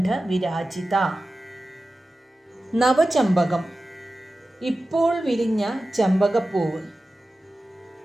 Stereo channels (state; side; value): normal; both; correlation 0.94